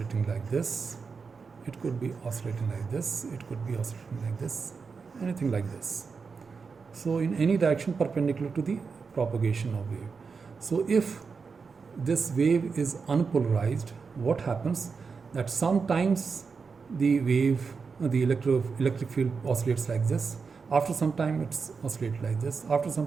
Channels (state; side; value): quieter; left; 5.2 dB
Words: like this, it could be oscillating like this, it could be oscillating like this, anything like this. So in any direction perpendicular to the propagation of wave. So if this wave is unpolarized, what happens? That sometimes the wave, the electric field oscillates like this, after some time it's oscillates like this, after